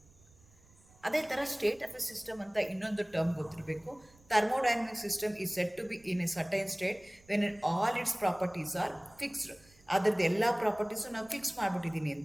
ಅದೇ ಥರ ಸ್ಟೇಟ್ ಆಫ್ ಎ ಸಿಸ್ಟಮ್ ಅಂತ ಇನ್ನೊಂದು ಟರ್ಮ್ ಗೊತ್ತಿರಬೇಕು. Thermodynamic system is set to be in a certain state when all its properties are fixed. ಅದರದ್ದು ಎಲ್ಲ ಪ್ರಾಪರ್ಟೀಸು ನಾವು ಫಿಕ್ಸ್ ಮಾಡಿಬಿಟ್ಟಿದ್ದೀನಿ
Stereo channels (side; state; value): right; noise; rumble, 28 dB below the sound